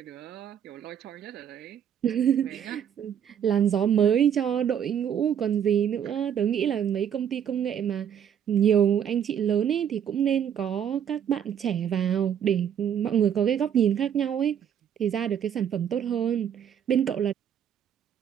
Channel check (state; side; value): quieter; left; 8.9 dB